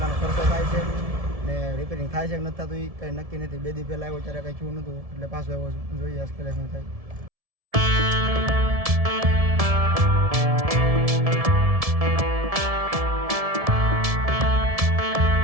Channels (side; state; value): left; late; 1.7 ms